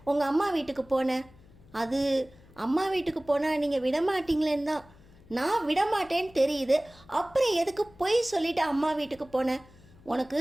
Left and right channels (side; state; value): left; noise; hum, 25 dB below the sound